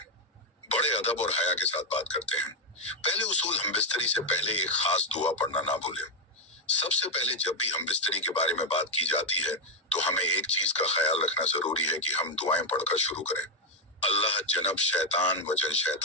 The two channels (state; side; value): normal; both; correlation 0.03